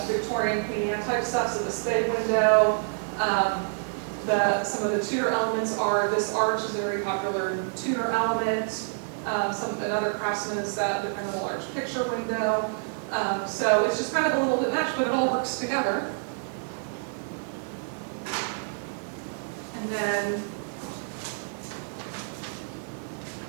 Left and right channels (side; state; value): left; silent; 60 dB below the other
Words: Victorian Queen Anne type stuff. So this bay window, some of the Tudor elements are, this arch is a very popular Tudor element. Another craftsman is that the kind of a large picture window. So it's just kind of a little bit matched, but it all works together. And then,